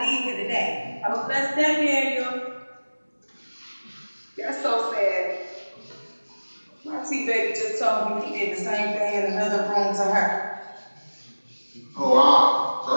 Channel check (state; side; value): inverted; both; correlation -1.00